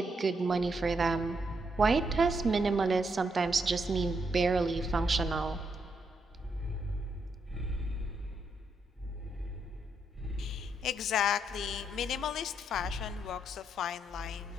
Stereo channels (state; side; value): normal; both; correlation 0.78